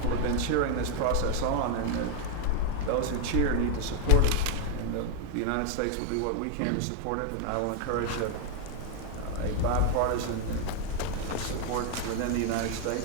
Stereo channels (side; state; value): both; different; correlation 0.00